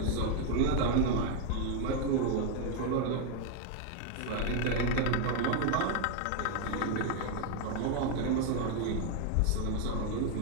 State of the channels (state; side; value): different; both; correlation 0.01